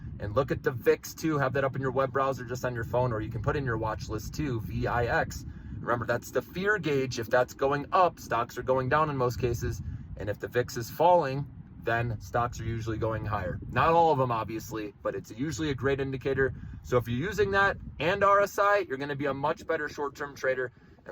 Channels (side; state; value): both; identical; correlation 1.00